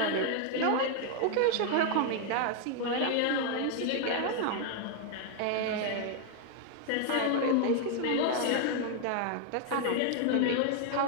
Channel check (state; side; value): different; both; correlation 0.00